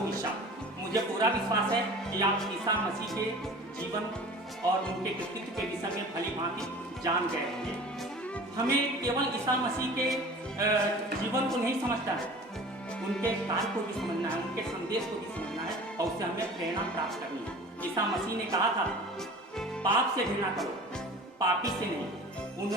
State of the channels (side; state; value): both; normal; correlation 0.41